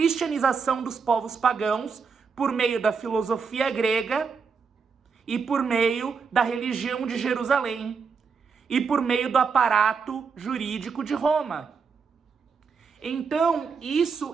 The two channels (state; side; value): quieter; left; 5.6 dB